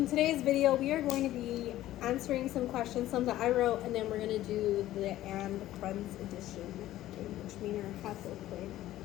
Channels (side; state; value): right; quieter; 14.4 dB